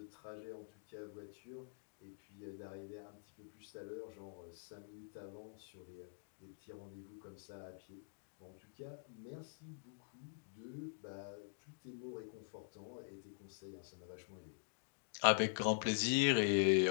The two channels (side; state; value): right; silent; digital silence